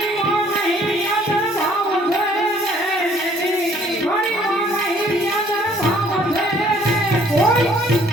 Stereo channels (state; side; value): normal; both; correlation 0.60